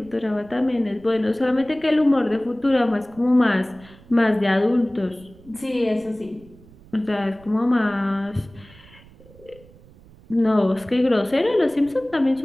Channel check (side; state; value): right; noise; rumble, 24 dB below the sound